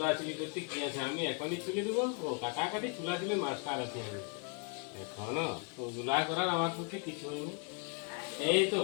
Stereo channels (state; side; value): quieter; right; 35.3 dB